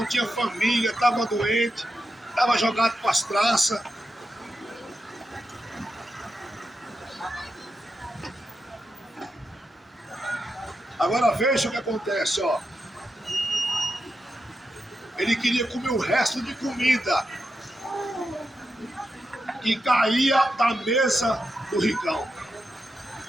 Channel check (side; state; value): both; normal; correlation 0.87